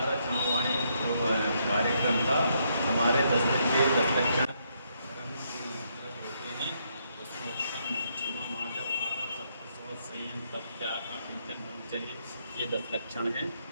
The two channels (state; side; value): inverted; both; correlation -0.75